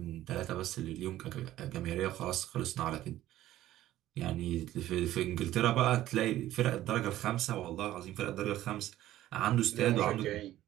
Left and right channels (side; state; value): left; quieter; 14.1 dB